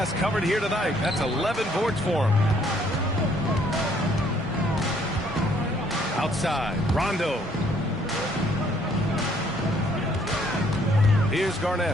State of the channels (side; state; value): both; normal; correlation 0.65